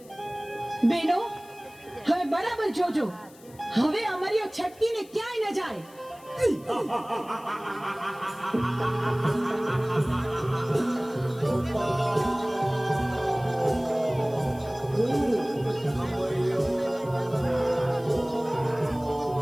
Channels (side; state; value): left; noise; hiss, 25 dB below the sound